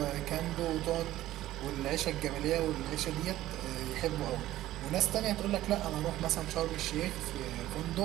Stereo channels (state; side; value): quieter; left; 14.7 dB